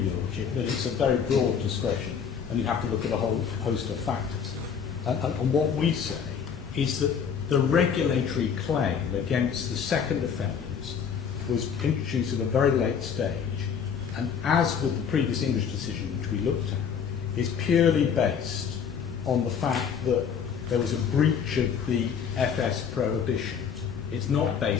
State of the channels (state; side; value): quieter; right; 7.1 dB